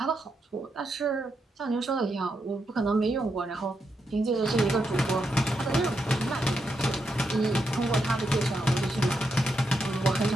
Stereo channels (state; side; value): normal; both; correlation 0.83